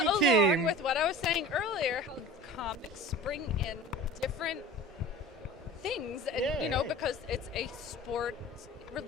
along team. with what I was saying earlier, how comics bring in different things, and, Yeah. because it's a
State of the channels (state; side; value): normal; both; correlation 0.39